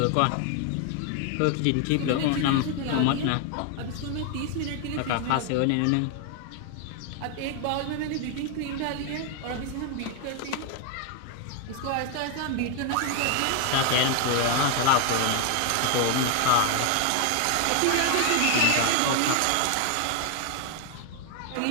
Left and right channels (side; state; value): both; different; correlation 0.01